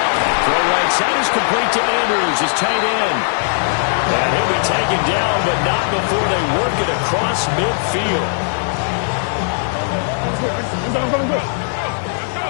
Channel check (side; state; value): right; silent; 67 dB below the other